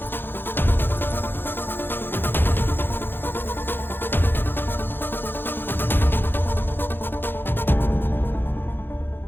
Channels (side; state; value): right; late; 0.10 ms